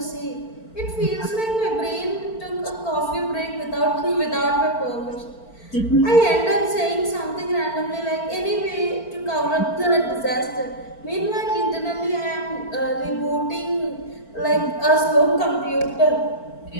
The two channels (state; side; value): late; right; 4.4 ms